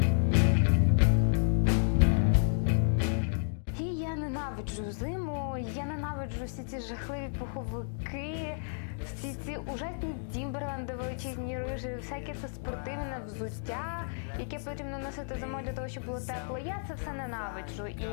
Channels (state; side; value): silent; right; digital silence